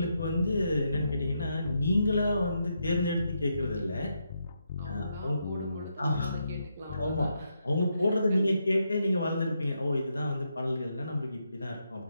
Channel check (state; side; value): inverted; both; correlation -0.81